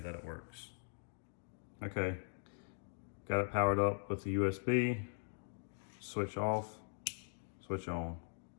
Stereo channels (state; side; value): silent; right; digital silence